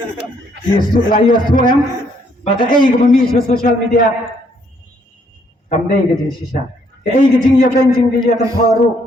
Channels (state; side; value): normal; both; correlation 0.69